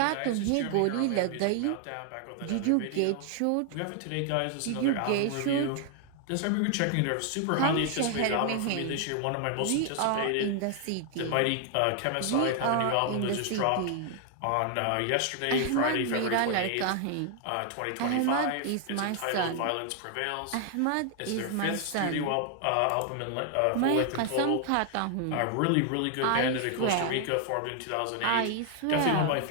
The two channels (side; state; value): both; different; correlation 0.00